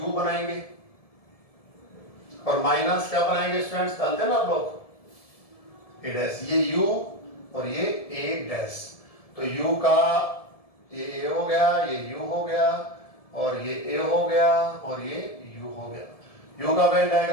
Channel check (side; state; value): right; late; 1.7 ms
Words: बनाएंगे और माइनस क्या बनाएंगे स्टूडेंट्स, जानते हैं ना आप लोग, ए डैश। ये u और ये ए डैश, तो u का ये a हो गया, ये u हो गया, और ये a हो गया, और ये u हो गया। u का वेन